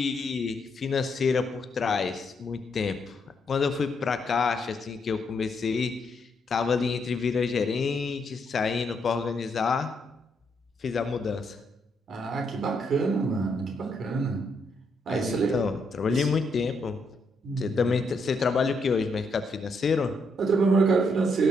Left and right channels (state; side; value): normal; both; correlation 0.76